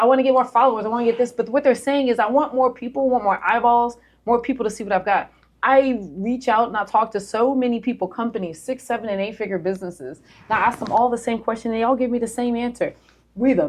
want to get more followers, I want to get this. But what they're saying is, I want more people, want more eyeballs, more people to see what I've got. I reach out and I talk to so many people, companies, 6, 7, and 8-figure businesses. And I ask them all the same question. They all give me the same answer. We're the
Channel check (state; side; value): identical; both; correlation 1.00